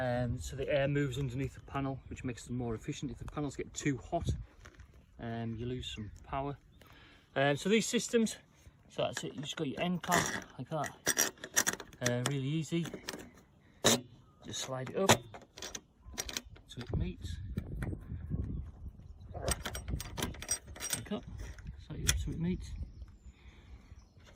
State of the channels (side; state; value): both; identical; correlation 1.00